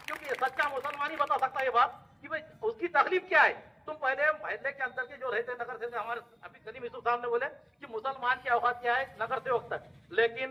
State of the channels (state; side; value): identical; both; correlation 1.00